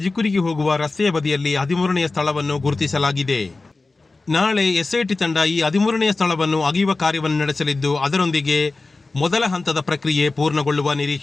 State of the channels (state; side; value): quieter; right; 3.5 dB